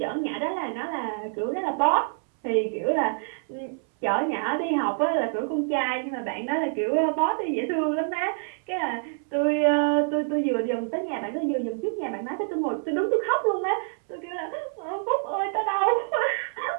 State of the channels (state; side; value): silent; left; 61 dB below the other